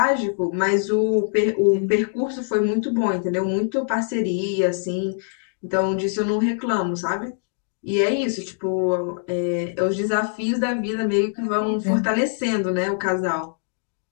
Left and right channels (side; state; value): right; silent; digital silence